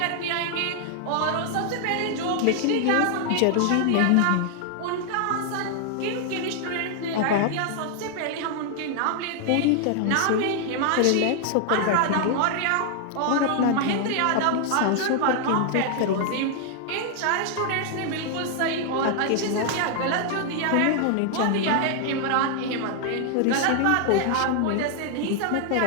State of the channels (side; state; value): both; different; correlation 0.00